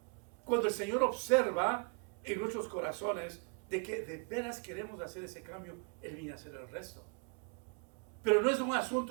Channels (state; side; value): quieter; left; 36.9 dB